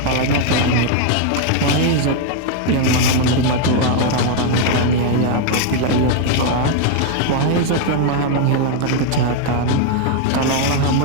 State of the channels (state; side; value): different; both; correlation 0.00